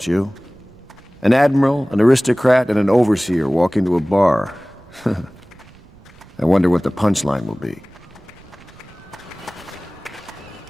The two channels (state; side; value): noise; right; rumble, 25 dB below the sound